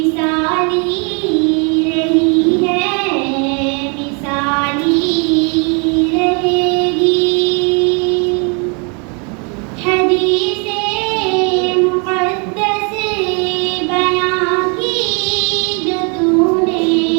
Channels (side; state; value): left; quieter; 35.0 dB